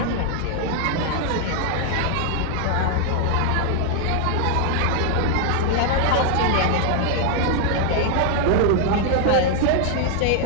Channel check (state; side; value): different; both; correlation 0.00